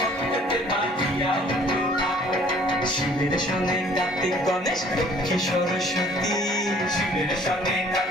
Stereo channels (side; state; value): both; normal; correlation 0.56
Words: বাজিয়া উঠল ঢা শিবের সঙ্গে কার্তিক গণেশ লক্ষ্মী সরস্বতী শিবের সঙ্গে